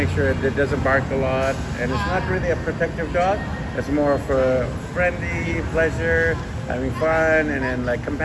sure that it doesn't bark a lot, and it's not really a protective dog. It's more for friendly pleasure, having fun, and then like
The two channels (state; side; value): identical; both; correlation 1.00